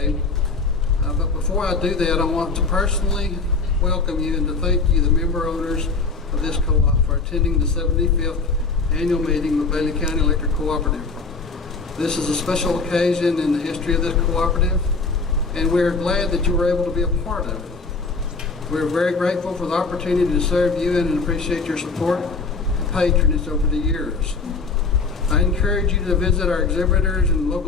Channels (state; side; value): quieter; right; 4.2 dB